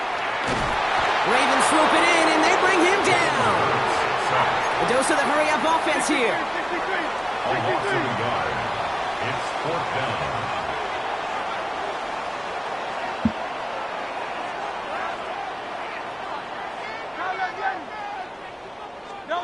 Ravens swoop it in, and they bring him down. A dose of the hurry-up offense here. A loss of a yard. It's 4th down.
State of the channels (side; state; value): both; identical; correlation 1.00